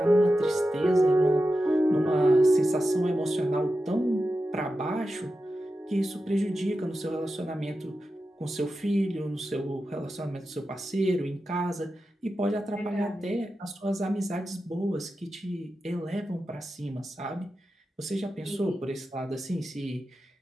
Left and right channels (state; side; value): normal; both; correlation 0.91